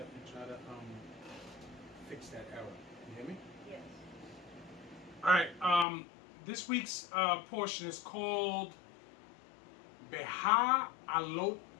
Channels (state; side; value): drops out; right; at 5.9 s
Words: fix that error. You hear me? Yes. All right. This week's portion is called Beha